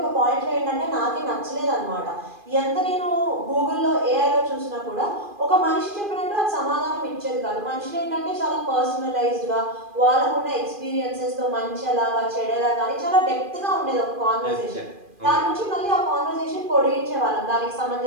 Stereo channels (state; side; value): late; left; 2.4 ms